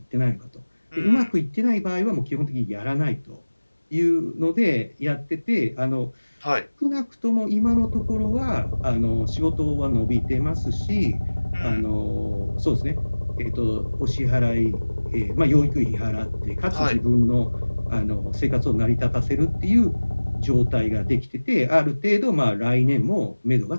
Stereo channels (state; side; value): inverted; both; correlation -1.00